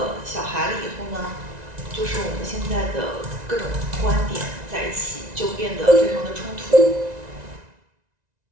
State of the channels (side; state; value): left; late; 1.9 ms